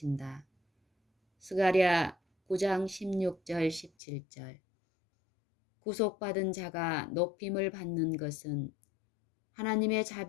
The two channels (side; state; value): right; drops out; at 3.9 s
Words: 스가랴 9장 16절 17절. 구속받은 자가 높임을 받는 것은 하나님의